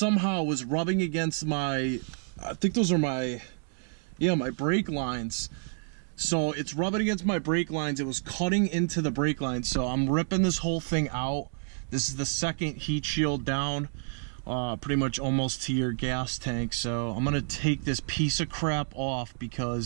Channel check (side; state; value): left; silent; 59 dB below the other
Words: was rubbing against my, I think those are my brake lines. So it's rubbing against my brake lines. It was cutting into the brake lines. So I'm ripping this whole thing out This is the second heat shield down, pretty much almost to your gas tank. So I'm gonna take this piece of crap off